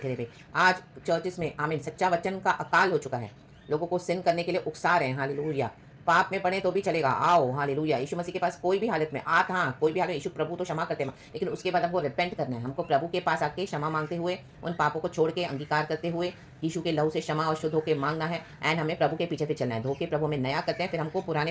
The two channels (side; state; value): both; identical; correlation 1.00